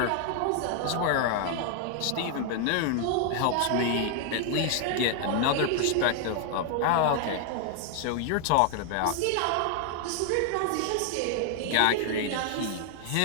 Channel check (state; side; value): different; both; correlation 0.00